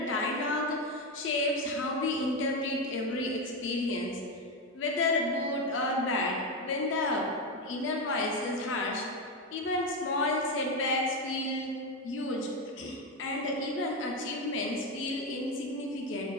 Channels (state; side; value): normal; both; correlation 0.12